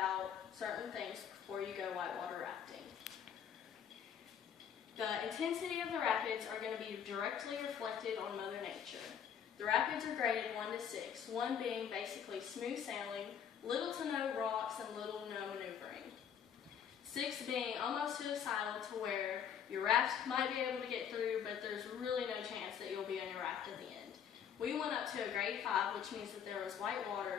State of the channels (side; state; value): right; quieter; 8.3 dB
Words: certain things before you go whitewater rafting. The intensity of the rapids are going to be directly reflected on Mother Nature. The rapids are graded 1 to 6, 1 being basically smooth sailing, little to no rocks, and little to no maneuvering. 6 being almost suicidal to where your raft might be able to get through, but there's really no chance that you'll be on your raft at the end. We went up to a grade 5, which means that there was white